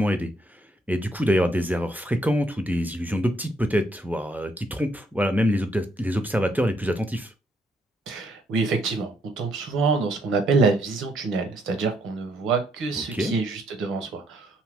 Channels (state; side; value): normal; both; correlation 0.72